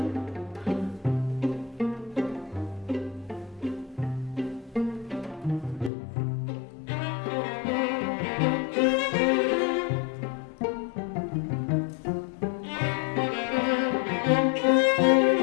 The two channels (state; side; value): drops out; right; at 5.9 s